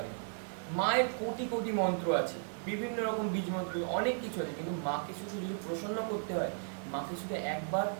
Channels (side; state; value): left; silent; digital silence